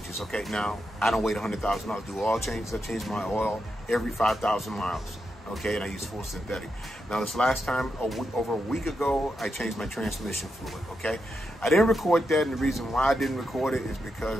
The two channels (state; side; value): normal; both; correlation 0.85